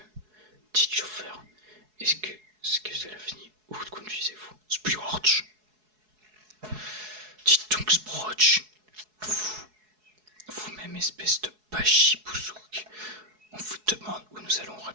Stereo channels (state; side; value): late; left; 4.7 ms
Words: Dites chauffeur, est-ce que cela finit? Où conduisez-vous? Sproch. Dites donc Sproch. Vous-même, espèce de bachibouzouk. On vous demande où nous allons,